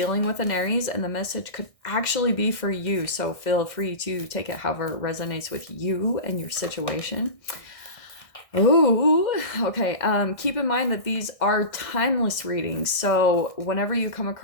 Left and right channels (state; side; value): late; right; 1.6 ms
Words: with an Aries, and the message could actually be for you. So, feel free to take it however it resonates with you and your situation. Oh, okay. Keep in mind that these are timeless readings. So whenever you come